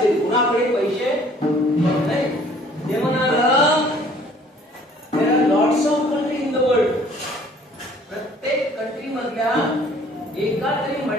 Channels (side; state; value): both; normal; correlation 0.56